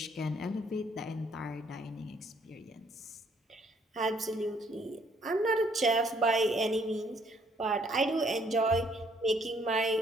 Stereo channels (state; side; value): normal; both; correlation 0.66